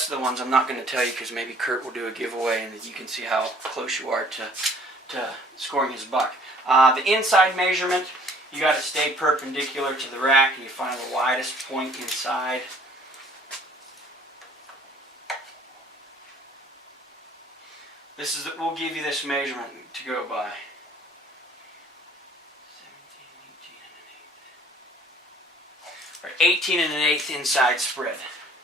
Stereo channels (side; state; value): both; normal; correlation 0.55